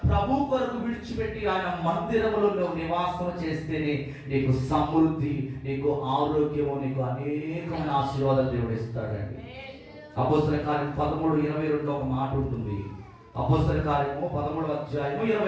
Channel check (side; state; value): both; identical; correlation 1.00